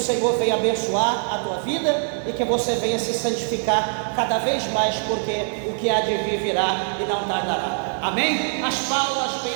venha abençoar a tua vida e que você venha se santificar cada vez mais, porque o que há de vir virá e não tardará. Amém? As palmas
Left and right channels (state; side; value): silent; left; 63 dB below the other